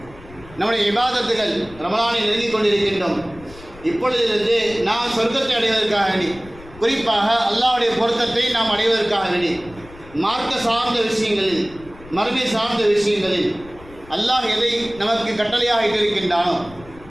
நம்முடைய இபாதத்துகள் ரமலானில் நெருங்கிக் கொண்டிருக்கின்றோம். இப்பொழுதிலிருந்து நாம் சொர்க்கத்தை அடைவதற்காக வேண்டி, குறிப்பாக அல்லாஹ்வுடைய பொருத்தத்தை நாம் அடைவதற்காக வேண்டி, மார்க்க சார்ந்த விஷயங்களில், மறுமை சார்ந்த விஷயங்களில் அல்லாஹ் எதை நமக்கு கட்டளையாக இட்டிருக்கின்றானோ,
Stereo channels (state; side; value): noise; left; rumble, 20 dB below the sound